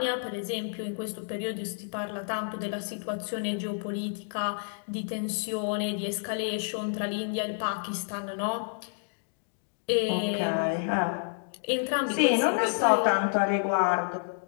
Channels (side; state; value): right; silent; digital silence